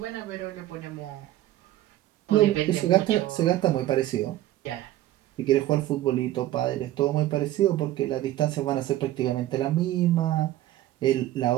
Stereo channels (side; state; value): left; quieter; 14.5 dB